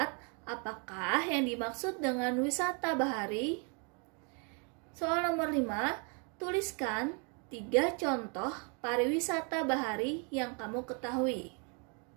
apakah yang dimaksud dengan wisata bahari? Soal nomor 5, tuliskan 3 contoh pariwisata bahari yang kamu ketahui.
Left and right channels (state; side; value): quieter; left; 36.7 dB